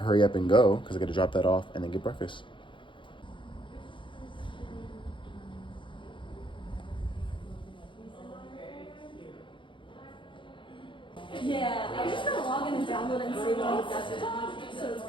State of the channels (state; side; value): late; right; 0.24 ms